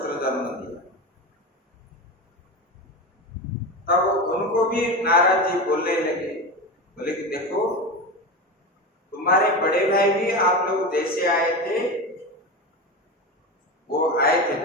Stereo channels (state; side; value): normal; both; correlation 0.22